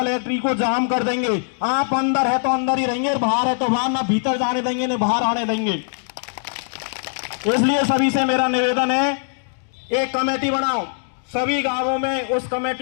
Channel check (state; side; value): silent; right; digital silence